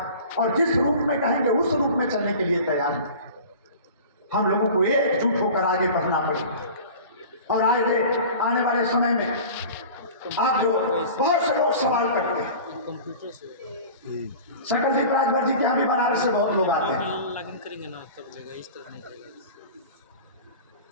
और जिस रूप में कहेंगे उस रूप में चलने के लिए तैयार हैं। हम लोगों को एकजुट होकर आगे बढ़ना पड़ेगा। और आगे आने वाले समय में आप जो बहुत से लोग सवाल करते हैं, सकलदीप राजभर जी के यहाँ भी बनारस से बहुत लोग आते हैं। लॉगिन करेंगे ना तब जगह इस तरह नहीं करेगा।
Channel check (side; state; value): both; inverted; correlation -0.39